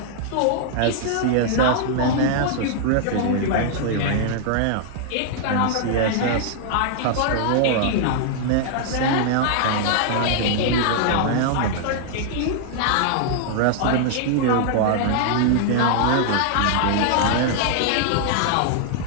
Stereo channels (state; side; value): different; both; correlation -0.01